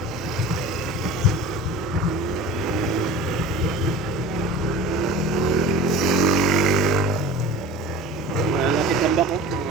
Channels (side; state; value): both; normal; correlation 0.36